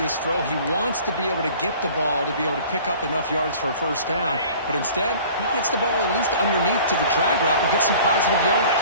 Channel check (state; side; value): inverted; both; correlation -0.47